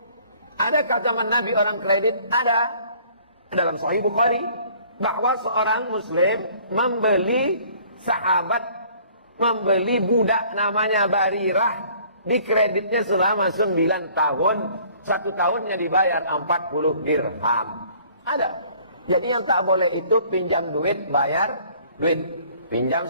Adakah zaman Nabi orang kredit? Ada. Dalam Sahih Bukhari. Bahwa seorang muslim membeli budak namanya Barirah. Dikreditnya selama 9 tahun. 1 tahunnya dibayar 40 dirham. Ada. Jadi yang tak boleh itu pinjam duit, bayar duit. Pinjam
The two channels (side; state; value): both; inverted; correlation -0.55